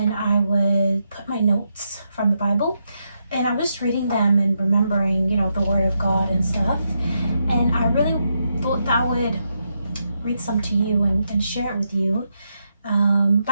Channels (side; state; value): both; inverted; correlation -0.83